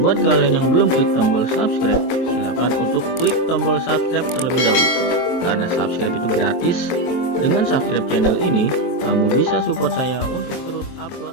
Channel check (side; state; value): right; late; 23 ms